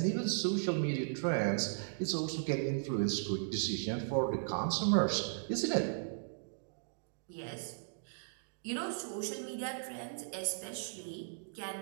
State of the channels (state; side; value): silent; left; digital silence